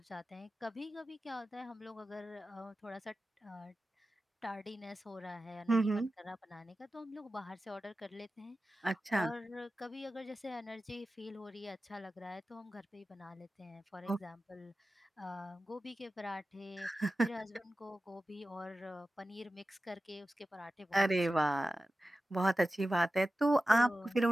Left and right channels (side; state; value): both; normal; correlation 0.94